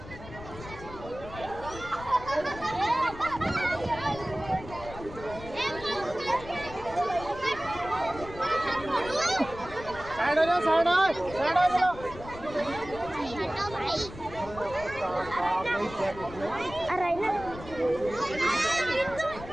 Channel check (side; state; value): left; noise; rumble, 14 dB below the sound